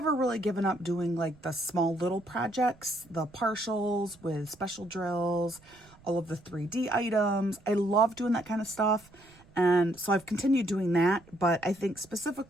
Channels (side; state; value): right; noise; rumble, 26 dB below the sound